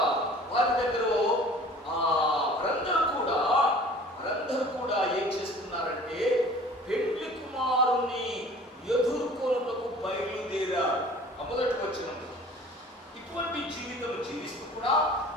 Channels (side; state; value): both; normal; correlation 0.47